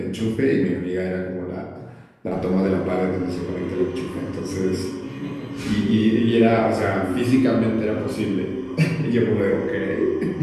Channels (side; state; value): both; identical; correlation 1.00